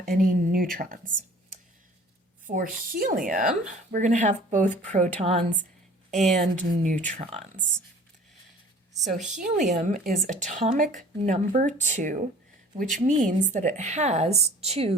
any neutrons. For helium, we're going to have both protons and neutrons. So helium is atomic number 2, which means that it has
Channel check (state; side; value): normal; both; correlation 0.49